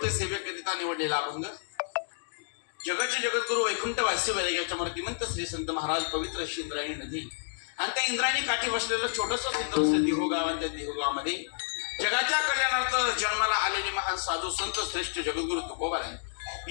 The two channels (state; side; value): silent; right; digital silence